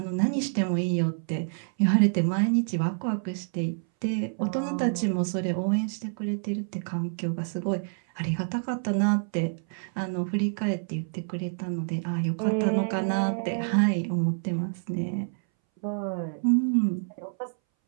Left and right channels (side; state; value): left; silent; 60 dB below the other